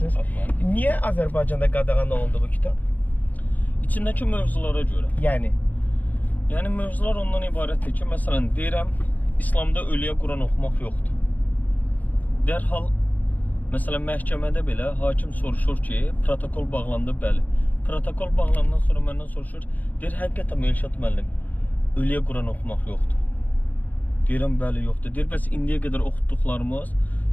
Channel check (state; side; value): late; right; 0.081 ms